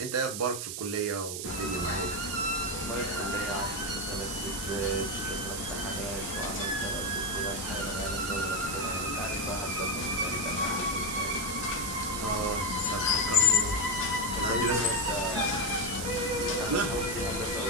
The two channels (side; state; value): right; noise; hiss, 5 dB below the sound